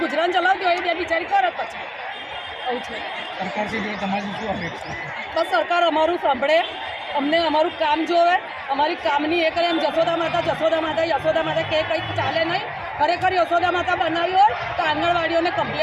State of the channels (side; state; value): both; identical; correlation 1.00